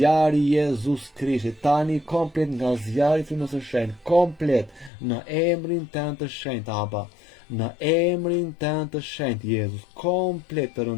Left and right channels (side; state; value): right; drops out; at 4.9 s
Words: i Jezus Krishtit, tani komplet nga zjarri i frymës së shenjtë, komplet në emrin Tënd të shenjtë Aba, në emrin Tënd të shenjtë Jezus, komplet